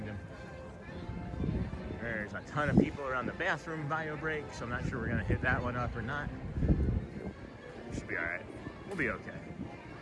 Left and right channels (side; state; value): both; identical; correlation 1.00